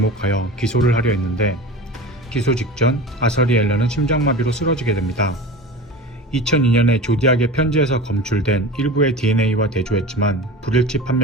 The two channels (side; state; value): both; normal; correlation 0.33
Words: 기소를 하려 했는데 기소 직전 아서리 앨런은 심장마비로 쓰러지게 됩니다. 2002년에 조디악의 편지에서 검출된 일부의 DNA와 대조했지만 불일치